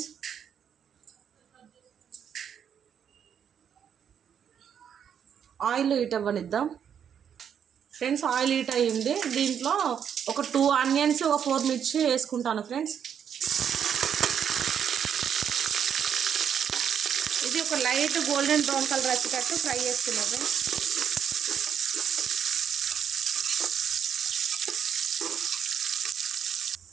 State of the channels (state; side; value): quieter; left; 8.3 dB